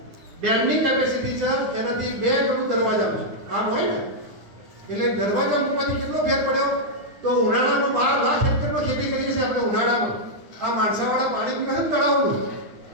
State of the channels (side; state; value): left; late; 9.7 ms